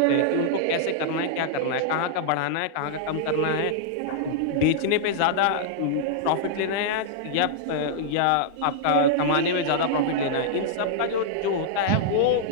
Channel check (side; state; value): both; different; correlation -0.01